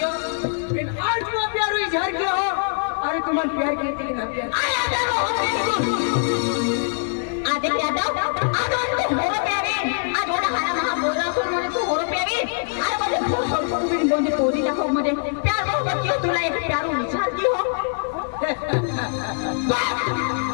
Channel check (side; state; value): right; silent; 64 dB below the other